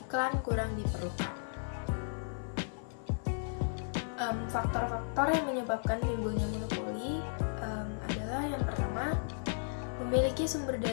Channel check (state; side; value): silent; right; 55 dB below the other